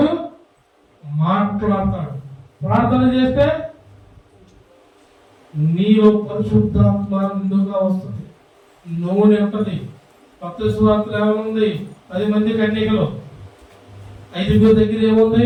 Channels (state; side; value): identical; both; correlation 1.00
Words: మాట్లాడతాడు. ప్రార్థన చేస్తే నీలో పరిశుద్ధాత్మ నిండుగా వస్తుంది, నూనె ఉంటుంది. మత్తయి సువార్తలో ఏముంది? 10 మంది కన్యకలు, 5 దగ్గర